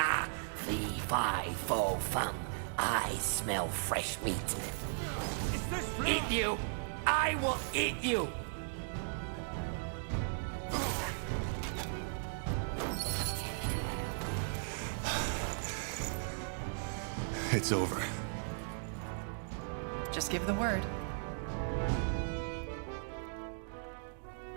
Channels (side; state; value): left; silent; digital silence